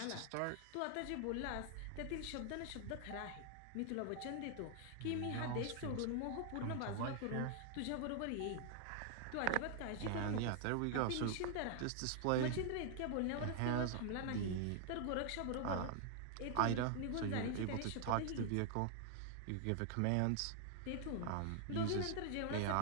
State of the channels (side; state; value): both; different; correlation 0.00